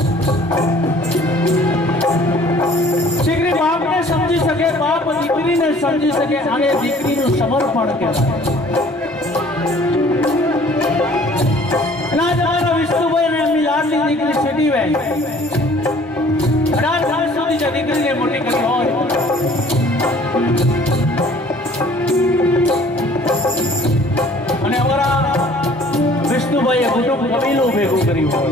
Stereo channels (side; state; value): both; normal; correlation 0.54